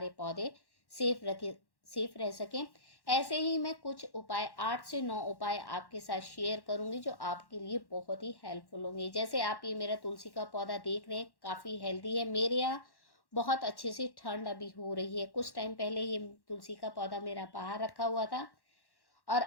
पौधे सेफ रह सकें। ऐसे ही मैं कुछ उपाय 8 से 9 उपाय आपके साथ शेयर करूंगी जो आपके लिए बहुत ही हेल्पफुल होंगे। जैसे आप ये मेरा तुलसी का पौधा देख रहे हैं, काफ़ी हेल्दी है। मेरे यहाँ बहुत अच्छे से ठंड अभी हो रही है। कुछ टाइम पहले ये तुलसी का पौधा मेरा बाहर रखा हुआ था और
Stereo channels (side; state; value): right; late; 1.1 ms